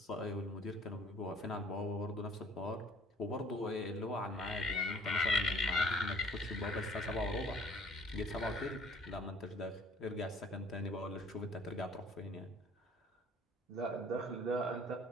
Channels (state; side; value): normal; both; correlation 0.55